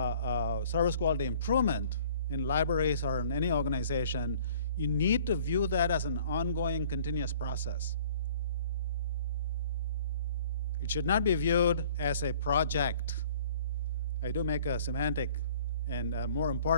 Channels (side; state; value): both; inverted; correlation -0.53